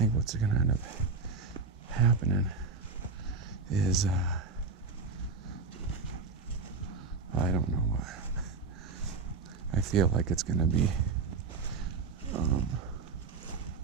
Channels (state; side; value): quieter; left; 4.5 dB